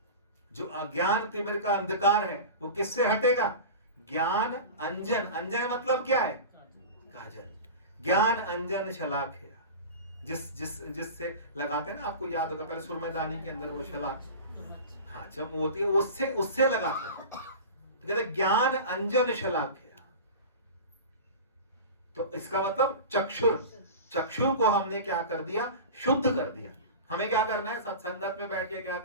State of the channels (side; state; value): both; inverted; correlation -0.32